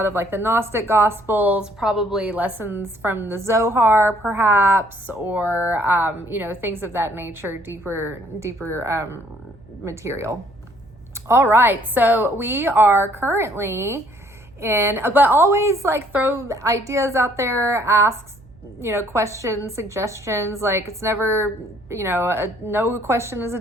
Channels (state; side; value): noise; right; hum, 25 dB below the sound